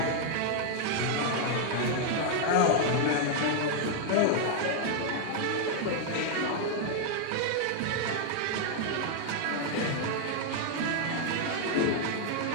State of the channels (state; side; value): different; both; correlation 0.00